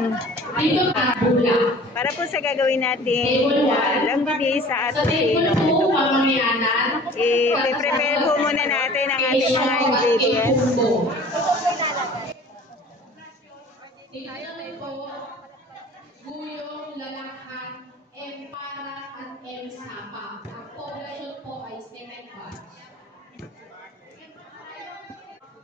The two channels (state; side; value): normal; both; correlation 0.46